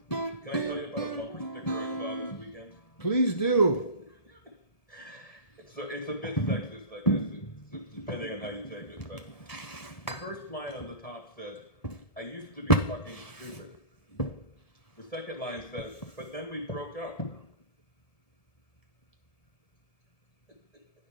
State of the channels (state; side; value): late; right; 1.7 ms